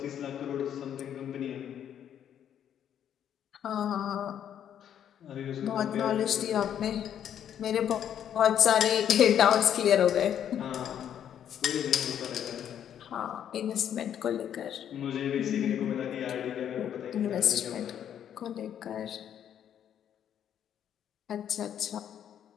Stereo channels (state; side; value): quieter; right; 9.6 dB